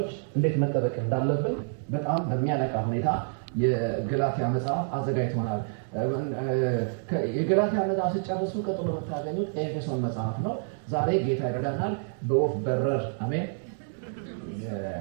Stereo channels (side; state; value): left; silent; digital silence